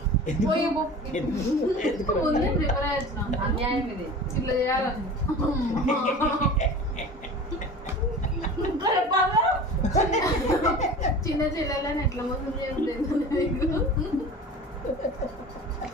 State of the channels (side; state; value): both; normal; correlation 0.37